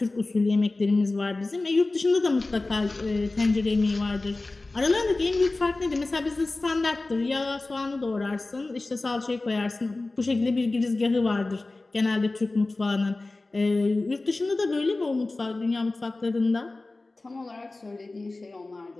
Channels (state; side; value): quieter; right; 3.1 dB